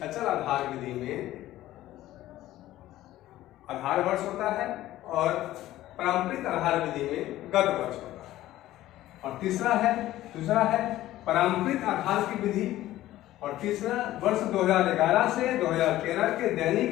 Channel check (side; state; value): right; quieter; 14.9 dB